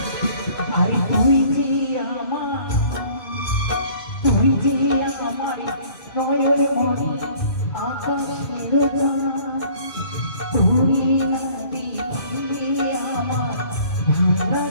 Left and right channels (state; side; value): late; right; 2.5 ms